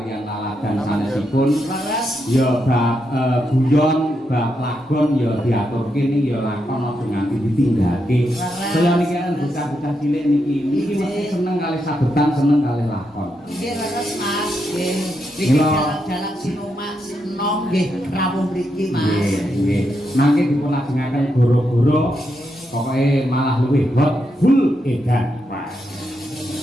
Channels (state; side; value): normal; both; correlation 0.83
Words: laladan sanesipun. Laras. Ya bab guyon, bab lagon ya diaturke niki ya lakon aja nganti ditinggake. Saya niki kan bocah-bocah cilik niki mesti seneng kali sabetan, seneng kali lakon. Nggih laras Mas. Nggih. Niki Mila. jalan-jalan Sinomak Sino nggih rawuh mriki Mas. Nggih, nggih. Mangke dipulajengaken goro-goro pokoke malah luwih hot full edan. Wah.